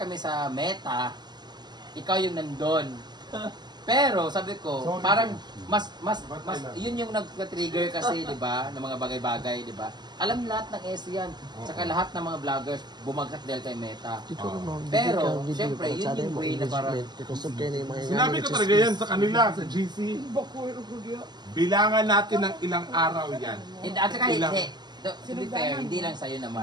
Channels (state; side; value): late; left; 0.21 ms